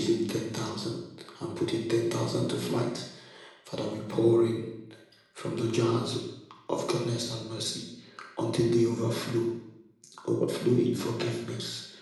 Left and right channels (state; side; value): identical; both; correlation 1.00